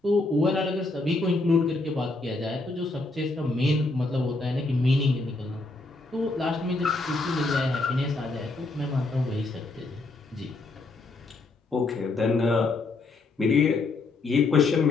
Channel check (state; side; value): quieter; right; 3.3 dB